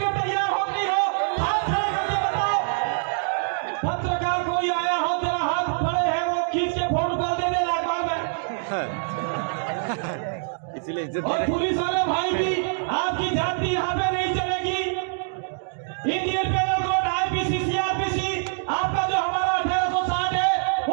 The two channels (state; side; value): silent; left; digital silence